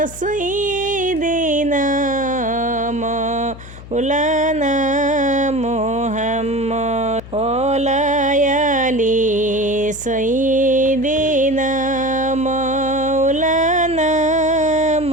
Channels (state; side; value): noise; left; hum, 15 dB below the sound